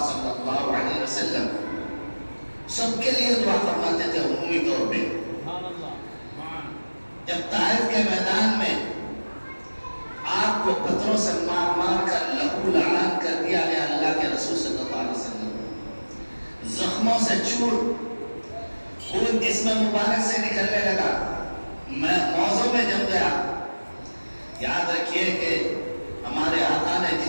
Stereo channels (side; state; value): both; inverted; correlation -1.00